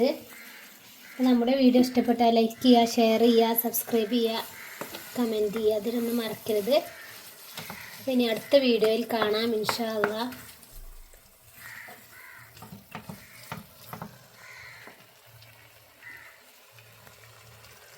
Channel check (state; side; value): identical; both; correlation 1.00